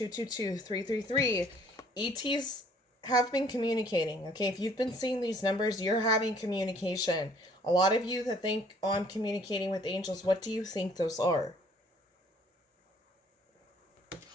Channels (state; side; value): normal; both; correlation 0.59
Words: 333. ETs have been communicating. Okay, if you've been seeing these numbers, you're having communication. A lot of you that think, oh, I'm communicating with angels, what do you think those are?